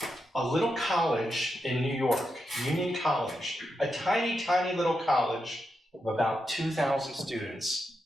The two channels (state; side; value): normal; both; correlation 0.86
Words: a little college in New York, Union College, a tiny, tiny little college of about 2,000 students.